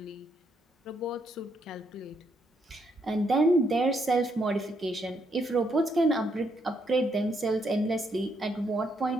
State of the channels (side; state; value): both; normal; correlation 0.75